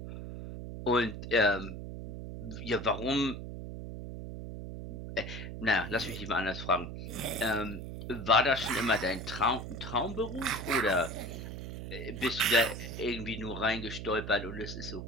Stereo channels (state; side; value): noise; right; hum, 8 dB below the sound